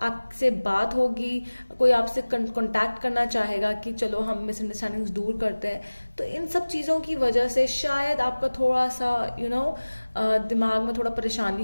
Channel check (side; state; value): both; inverted; correlation -1.00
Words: बात होगी, कोई आपसे कांटेक्ट करना चाहेगा कि चलो हम मिसअंडरस्टैंडिंग्स दूर करते हैं। तो इन सब चीज़ों की वजह से शायद आपका थोड़ा सा दिमाग में थोड़ा परेशानी